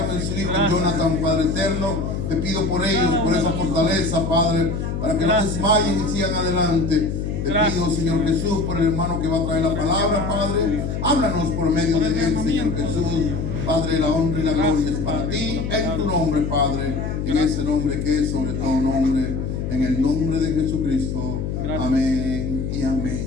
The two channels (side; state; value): left; noise; hum, 3 dB below the sound